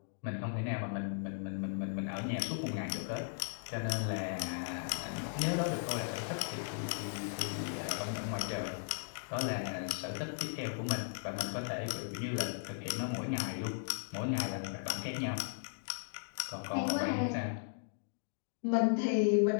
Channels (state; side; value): silent; right; digital silence